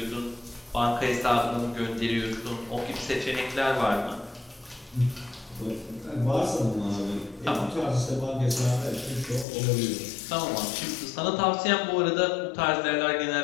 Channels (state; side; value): drops out; right; at 9.5 s